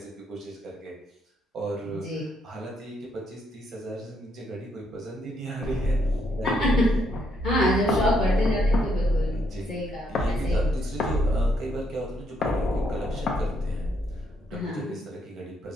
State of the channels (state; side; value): normal; both; correlation 0.74